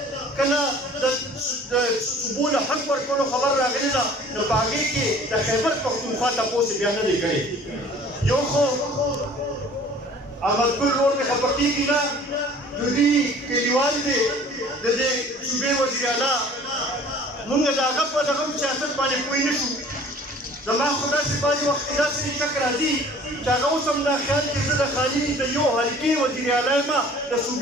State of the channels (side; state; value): both; normal; correlation 0.50